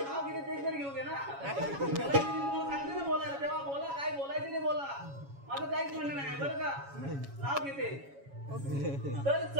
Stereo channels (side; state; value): left; late; 7.2 ms